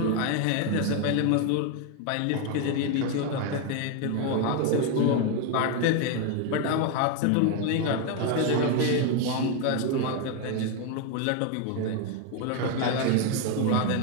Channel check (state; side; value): different; both; correlation 0.01